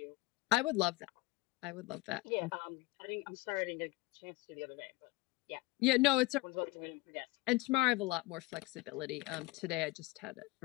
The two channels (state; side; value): quieter; right; 20.3 dB